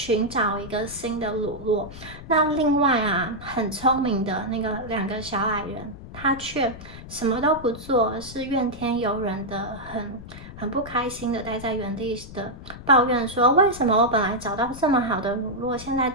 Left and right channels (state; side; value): noise; left; rumble, 14 dB below the sound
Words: 找一个新的乳酪。那另外啊，很聪明的那个2个小矮人，他却什么都不做，而是怨天尤人的，很不开心的待在原地的抱怨说：为什么我本来找到这么好的乳酪，现在